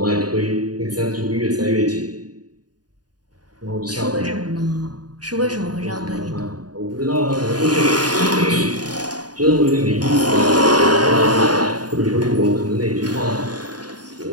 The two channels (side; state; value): left; late; 0.69 ms